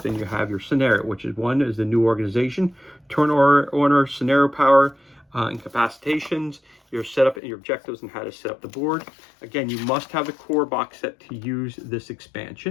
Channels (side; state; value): right; drops out; at 7.4 s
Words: you have your scenario, which is one is the new organization, turn order, scenario power, incapacitations, your setup and your objectives, and how to set up the board. Again, you must have the core box set to use this